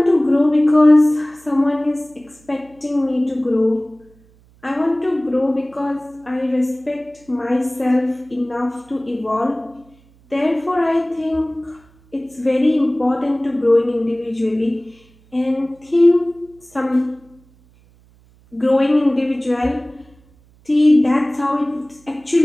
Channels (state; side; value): noise; right; hum, 30 dB below the sound